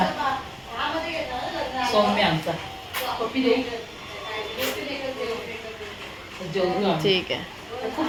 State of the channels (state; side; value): identical; both; correlation 1.00